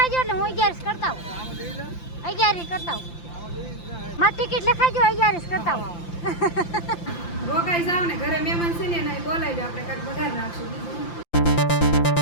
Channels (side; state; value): right; late; 5.8 ms